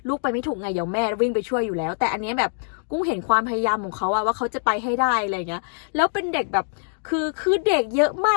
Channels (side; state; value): right; silent; digital silence